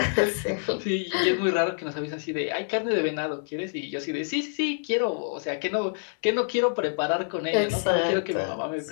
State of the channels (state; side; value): silent; right; digital silence